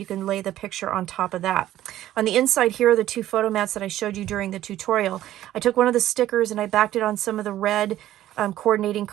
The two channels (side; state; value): left; quieter; 13.4 dB